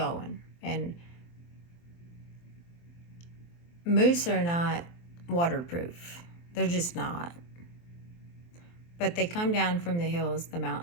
And moose are not waterproof. They're just not. But they come down from the hills, the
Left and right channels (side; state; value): right; late; 23 ms